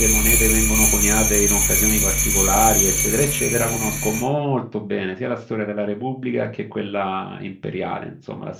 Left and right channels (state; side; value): identical; both; correlation 1.00